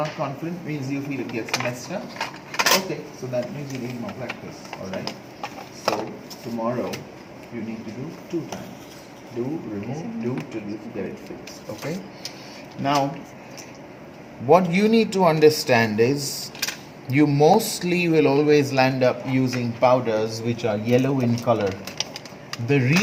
confident means you feel it gets messed up. Okay, so that means you need more practice. Alright? So tomorrow you need to do 2 times. Do, remove, do till you get it fixed. Okay? Now, what you need to understand is you mostly will always land up using powders which are yellow in color. The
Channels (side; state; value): both; identical; correlation 1.00